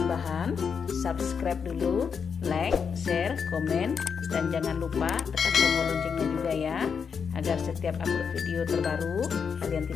subscribe dulu, like, share, komen, dan jangan lupa tekan tombol loncengnya juga ya, agar setiap upload video terbaru kalian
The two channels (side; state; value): right; quieter; 6.4 dB